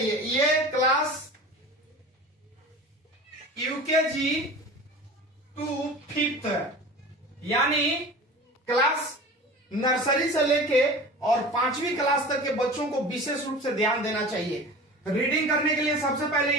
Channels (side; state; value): both; normal; correlation 0.36